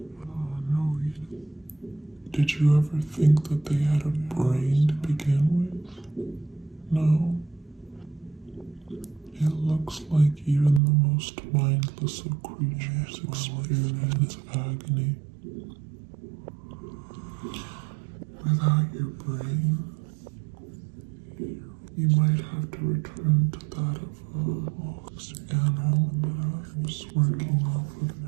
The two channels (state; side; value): drops out; left; at 10.8 s